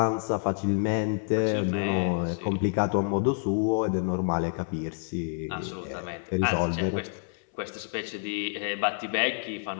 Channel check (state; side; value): silent; right; 59 dB below the other